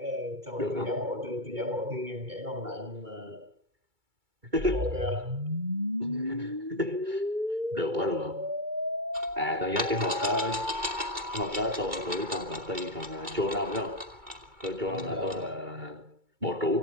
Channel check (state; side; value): late; left; 2.3 ms